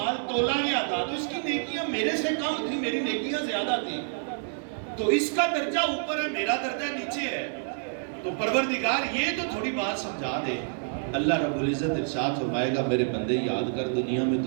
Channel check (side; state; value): left; silent; digital silence